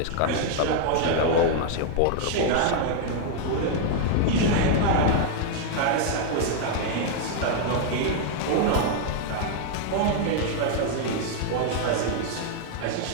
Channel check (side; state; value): both; different; correlation 0.00